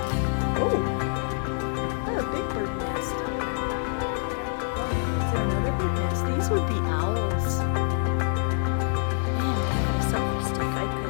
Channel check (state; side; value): silent; right; digital silence